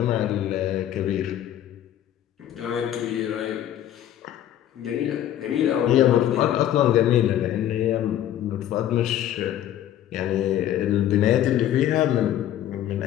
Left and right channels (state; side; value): quieter; right; 11.6 dB